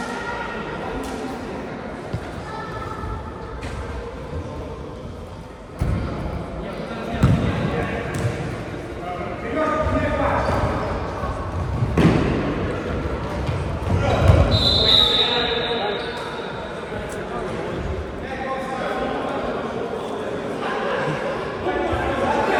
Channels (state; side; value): identical; both; correlation 1.00